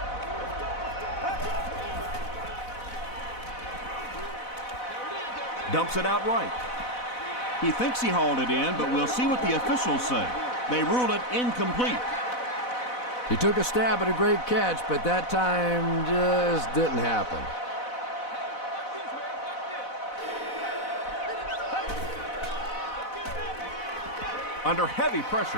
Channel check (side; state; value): right; late; 4.0 ms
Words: Dumps it out right. He thinks he hauled it in, but we'll see what the officials say. They rule it incomplete. He took a stab at a great catch, but that time just didn't happen. Under heavy